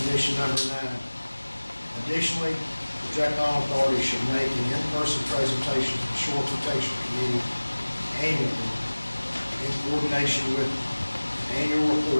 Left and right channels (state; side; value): inverted; both; correlation -1.00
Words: condition number 9. Additionally, the Jack Island Authority should make an in-person presentation to the Shore Protection Committee annually in coordination with the annual